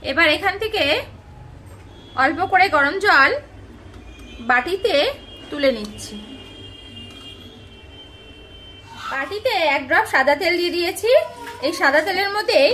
এবার এখান থেকে অল্প করে গরম জল বাটিতে তুলে নিচ্ছি। বাটিতে 1 ড্রপ সাদা তেল দিয়ে দিয়েছি। এই সাদা তেলের মধ্যে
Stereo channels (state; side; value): identical; both; correlation 1.00